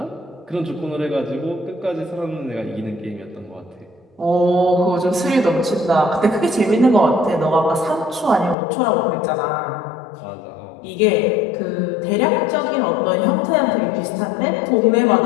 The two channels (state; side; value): drops out; right; at 8.6 s